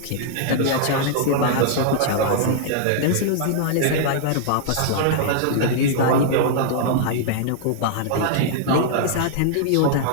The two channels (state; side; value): different; both; correlation -0.01